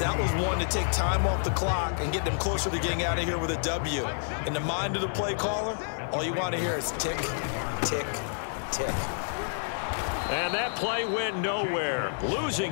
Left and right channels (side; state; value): right; silent; 59 dB below the other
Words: was one to take time off the clock and get them closer to getting out of here with a W. In the mind of the play caller, all you want to hear is tick, tick, tick. And that play went nowhere.